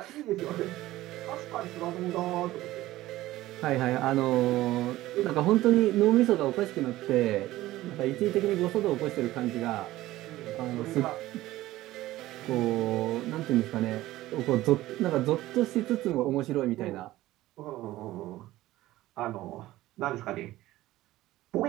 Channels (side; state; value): left; quieter; 16.3 dB